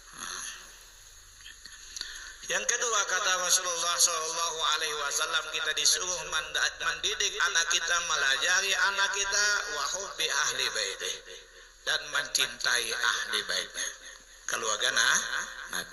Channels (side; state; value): both; identical; correlation 1.00